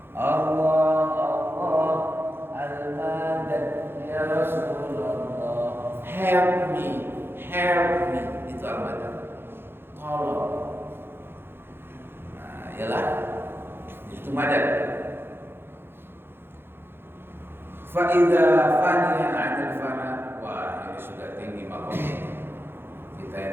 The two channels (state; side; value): late; left; 0.11 ms